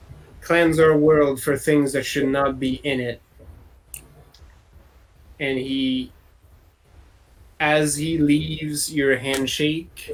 cleanse our world for things that should not be in it. And as he leaves your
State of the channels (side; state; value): both; identical; correlation 1.00